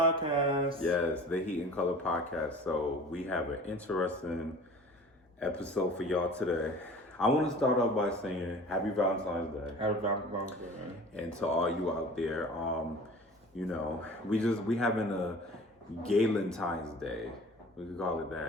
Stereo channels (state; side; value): normal; both; correlation 0.43